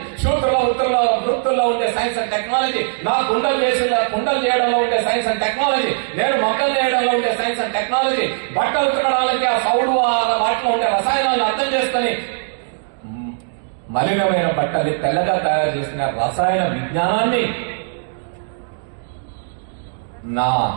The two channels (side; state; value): left; silent; digital silence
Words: శూద్రుల వృత్తుల్లో ఉండే సైన్స్ అండ్ టెక్నాలజీ, నా కుండలు చేయడంలో ఉండే సైన్స్ అండ్ టెక్నాలజీ, నేను మొక్కలు చేయడంలో ఉండే సైన్స్ అండ్ టెక్నాలజీ, బట్టలు ఉతకడానికి ఆ సౌడు వాటిలో ఉండే రసాయనాలను అర్థం చేసుకుని మలినమైన బట్టల్ని తెల్లగా తయారు చేసిన రసాయన విజ్ఞానాన్ని నా